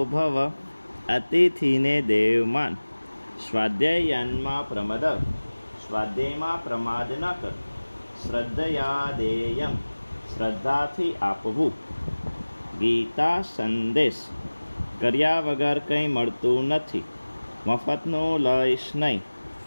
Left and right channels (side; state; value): both; inverted; correlation -1.00